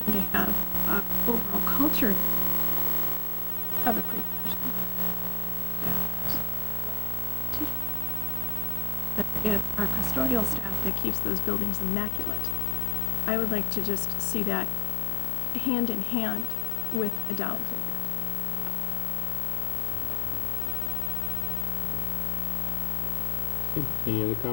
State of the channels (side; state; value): right; drops out; at 10.9 s